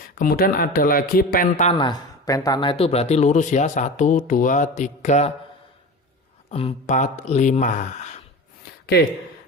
Kemudian ada lagi pentana. Pentana itu berarti lurus ya, 1, 2, 3, 4, 5. Oke,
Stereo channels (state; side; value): normal; both; correlation 0.31